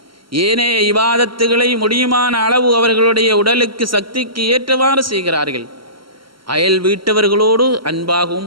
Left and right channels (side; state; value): left; late; 0.74 ms